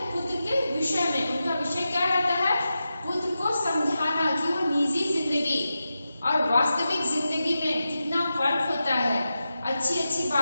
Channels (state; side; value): inverted; both; correlation -0.91